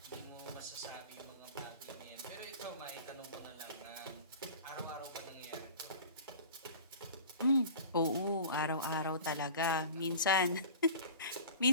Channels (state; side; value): inverted; both; correlation -0.40